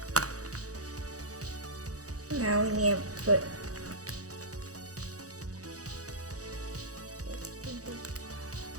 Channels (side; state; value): left; late; 0.66 ms